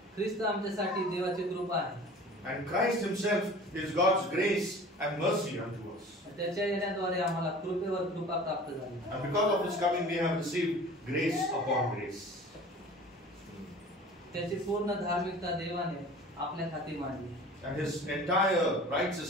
ख्रिस्त आमच्यासाठी देवाची कृपा आहे. And Christ himself is God's grace and mercy unto us. त्याच्या येण्याद्वारे आम्हाला कृपेवर कृपा प्राप्त झाली. And because of his coming we have received grace upon grace. त्याची पूर्ण धार्मिकता देवाने आपल्या हाती मांडली. And his entire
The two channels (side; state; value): both; normal; correlation 0.43